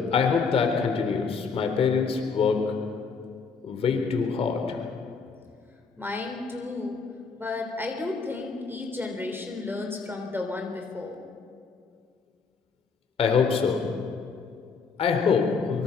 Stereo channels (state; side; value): quieter; right; 5.1 dB